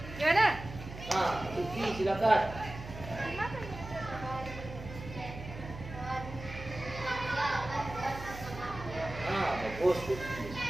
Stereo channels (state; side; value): noise; right; hum, 11 dB below the sound